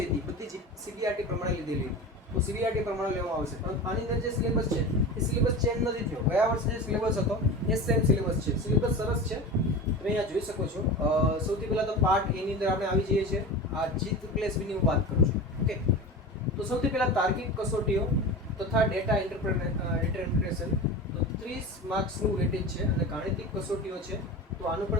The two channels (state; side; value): normal; both; correlation 0.30